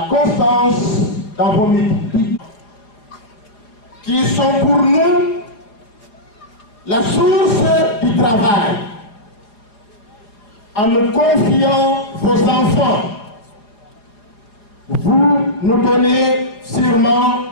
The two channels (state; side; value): late; right; 4.7 ms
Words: constance dans vos métiers, qui sont pour nous la source du travail. En nous confiant vos enfants, vous nous donnez sûrement